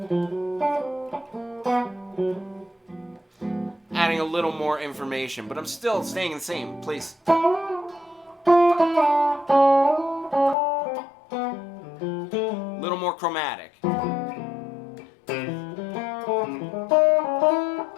Adding a little more information, but I'm still staying in the same place. A little more chromatic.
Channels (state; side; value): drops out; right; at 10.6 s